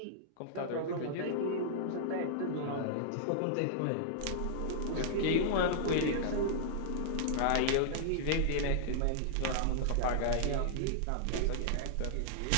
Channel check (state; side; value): different; both; correlation -0.01